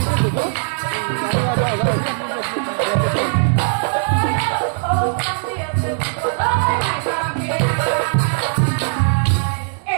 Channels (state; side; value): silent; left; digital silence